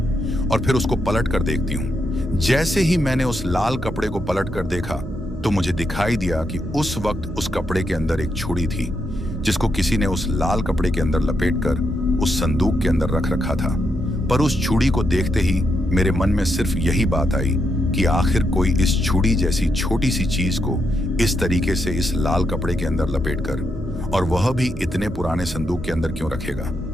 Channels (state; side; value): normal; both; correlation 0.81